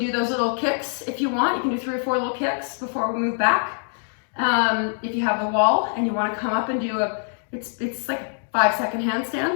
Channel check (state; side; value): silent; right; 58 dB below the other